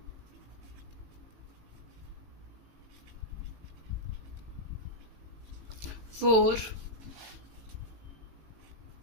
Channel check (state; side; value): late; left; 18 ms